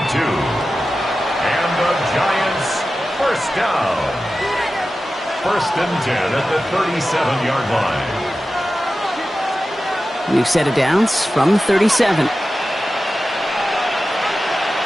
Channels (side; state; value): both; normal; correlation 0.94